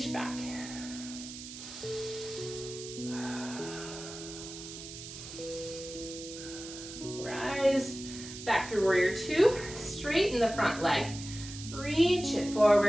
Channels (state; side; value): noise; right; hiss, 11 dB below the sound